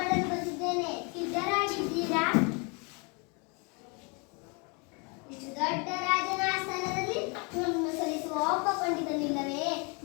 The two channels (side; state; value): right; quieter; 32.4 dB